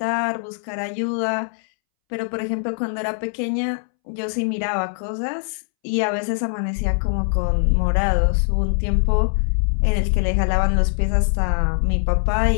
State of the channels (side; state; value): right; silent; 64 dB below the other